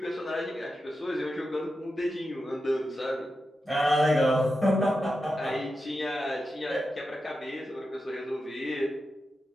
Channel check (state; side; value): normal; both; correlation 0.90